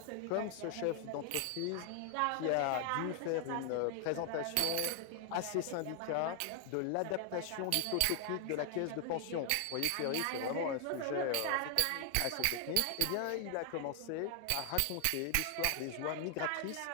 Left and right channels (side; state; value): both; different; correlation 0.00